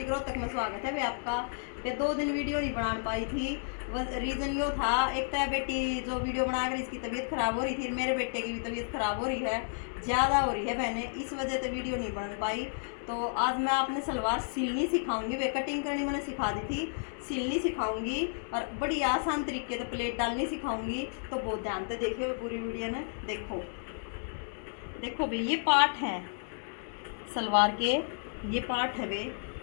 रोहतक में स्वागत है। वे आपका वे 2 दिन वीडियो नहीं बना पाई थी। रीज़न यो था, एक तो बेटी जो वीडियो बना कर इसकी तबीयत ख़राब हो रही थी, मेरे बेटे की भी तबीयत ख़राब हो रही है, ज़्यादा हो रही है बहने, इस वजह से वीडियो नहीं बन पाई। तो आज मैं आपने सलवार सिलनी सिखाऊंगी। वे कटिंग करनी मैंने सिखा दी थी, सिलनी सिखाऊंगी और बड़ी आसान तरीके से प्लेट डालनी सिखाऊंगी। तो बहुत ध्यान से देखिए पूरी वीडियो में। देखो भाई, ये पार्ट है सलवार के, ये पार्ट है वे,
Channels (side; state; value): right; silent; digital silence